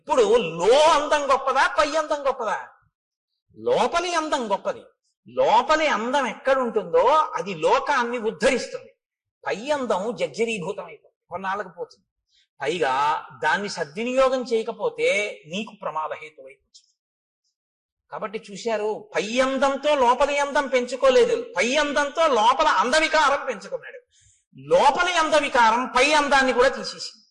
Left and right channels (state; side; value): identical; both; correlation 1.00